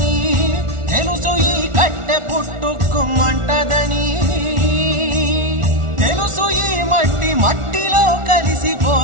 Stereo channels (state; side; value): late; left; 1.4 ms